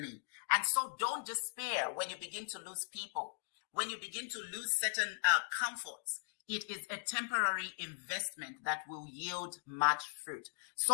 And so don't despair when you begin to lose people, when you begin to lose certain comforts. It is a temporary investment that will yield much fruit.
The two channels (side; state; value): right; silent; digital silence